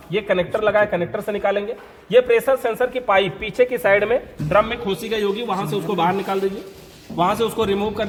ये कनेक्टर लगा है, कनेक्टर से निकालेंगे। ये प्रेशर सेंसर की पाइप पीछे की साइड में ड्रम में खोसी गई होगी, वहां से उसको बाहर निकाल दीजिए, वहां से उसको रिमूव कर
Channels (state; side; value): identical; both; correlation 1.00